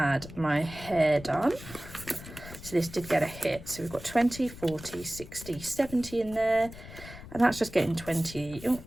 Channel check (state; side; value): noise; left; rumble, 15 dB below the sound